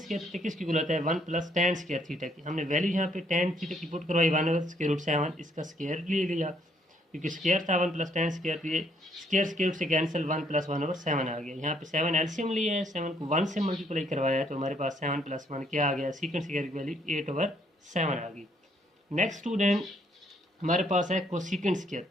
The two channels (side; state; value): both; normal; correlation 0.68